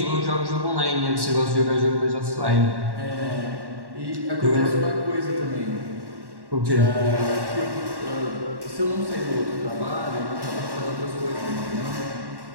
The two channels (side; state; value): left; late; 1.1 ms